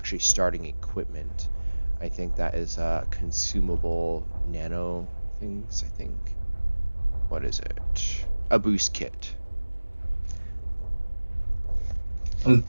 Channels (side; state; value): both; inverted; correlation -1.00